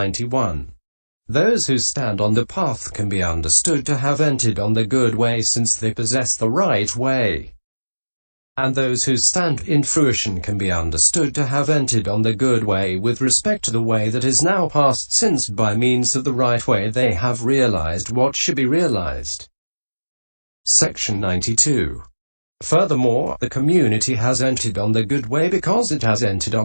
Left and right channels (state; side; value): inverted; both; correlation -1.00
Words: Those who stand on the path can be understood to have entered on the good way since they possess the right way. And those who stand in fruition can be understood to have entered on the good way with respect to the way that is now past, since by means of the right way they have realized what should be realized. Section 92. Furthermore, the community has entered on the good way because it has entered